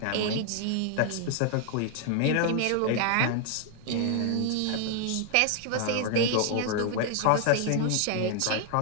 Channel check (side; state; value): both; different; correlation 0.00